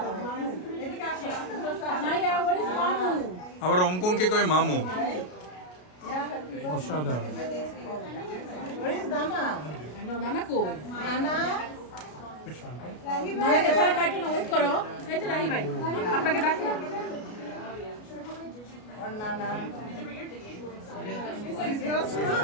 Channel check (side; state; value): right; late; 33 ms